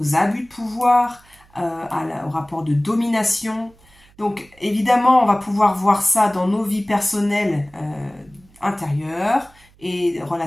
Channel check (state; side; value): noise; right; hum, 29 dB below the sound